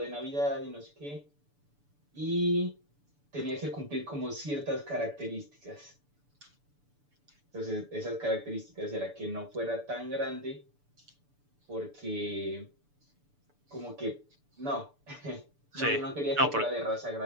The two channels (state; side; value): late; left; 6.9 ms